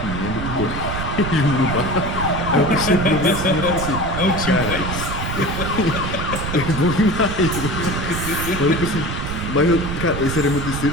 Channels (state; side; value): noise; right; rumble, 5 dB below the sound